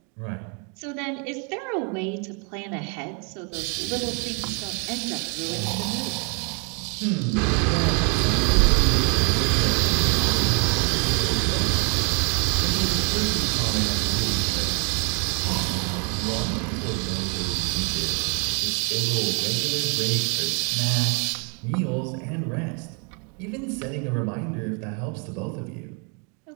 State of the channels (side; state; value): left; quieter; 36.6 dB